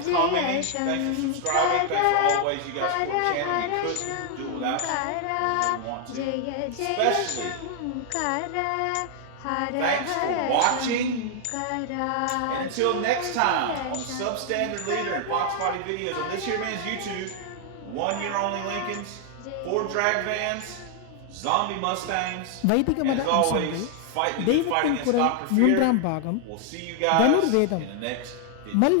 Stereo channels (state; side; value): different; both; correlation 0.00